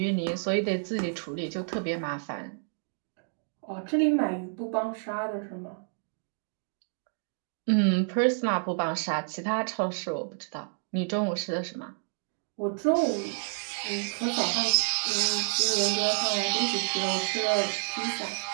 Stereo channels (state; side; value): silent; left; digital silence